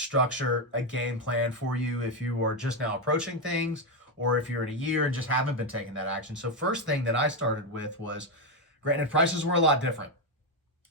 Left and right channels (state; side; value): normal; both; correlation 0.07